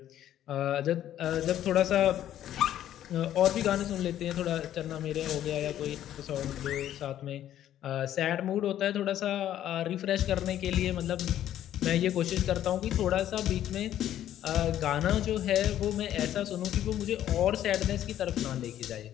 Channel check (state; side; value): quieter; right; 11.7 dB